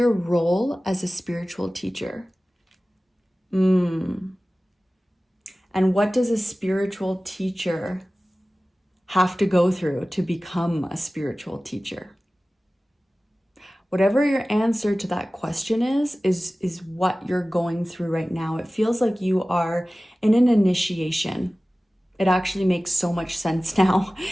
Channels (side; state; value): both; normal; correlation 0.97